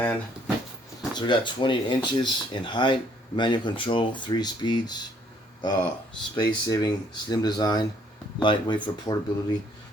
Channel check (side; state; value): both; normal; correlation 0.64